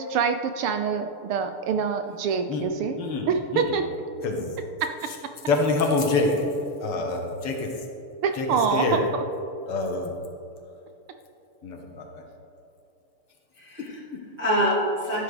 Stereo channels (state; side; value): late; left; 6.8 ms